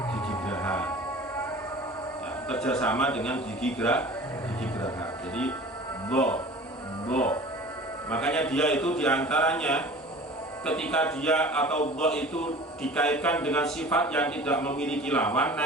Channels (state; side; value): normal; both; correlation 0.42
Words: gigi geraha. Ya, kerjasama dengan gigi geraha. Jadi bo. Makanya dia itu diantaranya ketika dia atau bo itu dikaitkan dengan sifat yang tidak memiliki lawan,